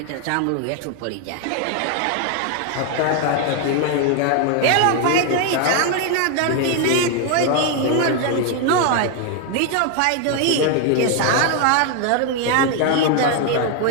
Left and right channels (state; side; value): different; both; correlation 0.01